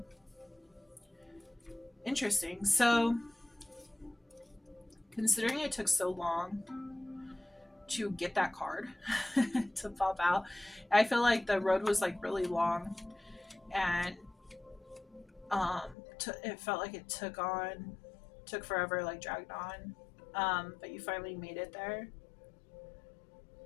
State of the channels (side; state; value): right; drops out; at 16.0 s